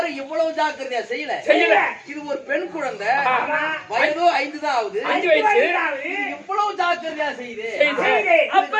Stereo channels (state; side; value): identical; both; correlation 1.00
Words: இவ்வளவு ஜாக்கிரதையா செய்யல. இது ஒரு பெண் குழந்தை, வயதோ 5 தான் ஆகுது. இவ்வளவு ஜாக்கிரதையா செய்யுது.